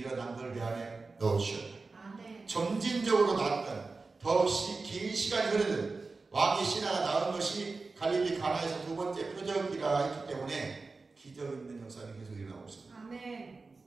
걸 내 안에 넣으셔요. 점진적으로 낫든 더없이 긴 시간이 흐르든 왕의 신하가 낳은 것이 갈릴리 가나에서 두 번째 표적이라 했기 때문에 기적 있는 역사는 계속 일어나고 있습니다.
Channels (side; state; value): left; quieter; 3.9 dB